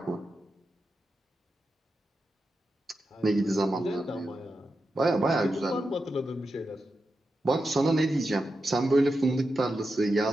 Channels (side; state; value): both; normal; correlation 0.89